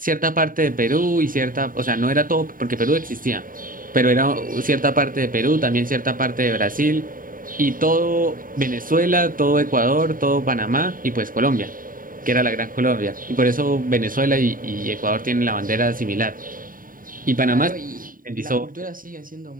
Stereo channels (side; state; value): left; late; 0.40 ms